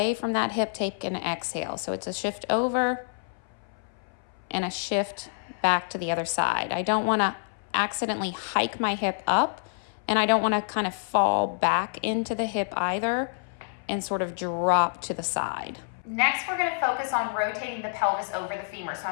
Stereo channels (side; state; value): right; silent; 60 dB below the other